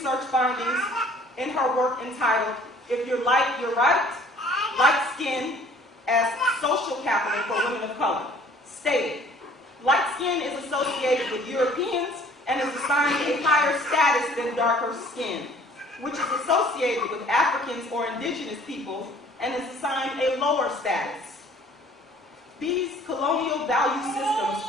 findings in her work entitled, If You're Light, You're Right, Light Skin as Social Capital for Women of Color, stated, light skin is associated with Europeans and is assigned a higher status than darker skin, which is associated with Africans or indigenous peoples and is assigned a lower status. These colonial value systems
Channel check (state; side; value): normal; both; correlation 0.54